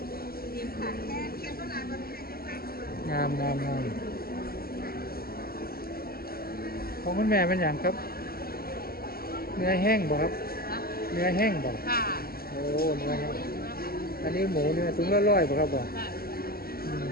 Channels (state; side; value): late; right; 0.44 ms